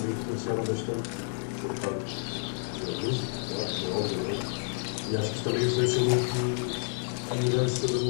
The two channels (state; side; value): silent; right; digital silence